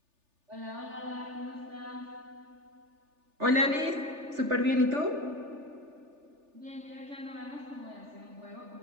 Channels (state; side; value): late; left; 3.4 ms